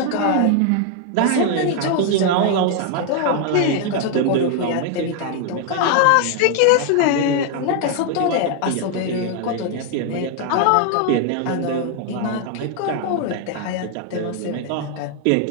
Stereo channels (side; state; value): both; different; correlation 0.00